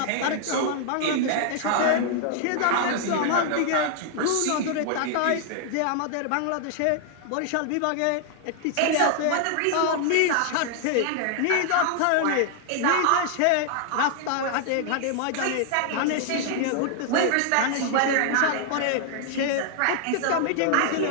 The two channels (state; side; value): different; both; correlation 0.00